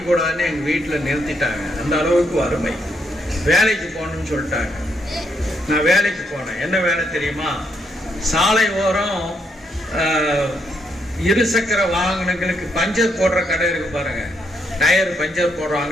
எங்கள் வீட்டில் நிறுத்திட்டாங்க. அந்த அளவுக்கு வறுமை. வேலைக்கு போகணும்னு சொல்லிட்டாங்க. நான் வேலைக்கு போனேன். என்ன வேலை தெரியுமா? சாலை ஓரம் இருசக்கர வாகனங்களுக்கு பஞ்சர் போடுற கடை இருக்கு பாருங்க, டயர் பஞ்சர்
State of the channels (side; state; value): both; normal; correlation 0.76